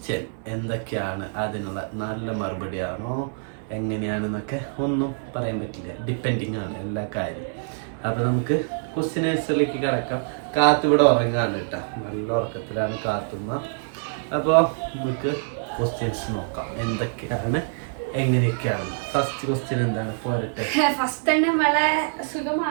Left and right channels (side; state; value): left; silent; 62 dB below the other